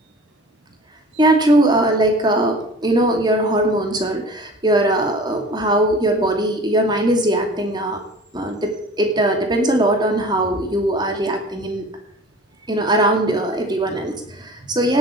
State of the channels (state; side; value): normal; both; correlation 0.42